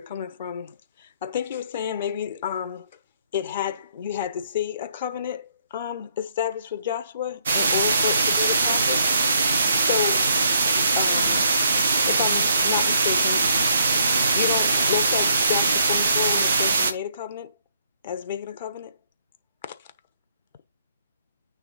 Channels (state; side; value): inverted; both; correlation -0.69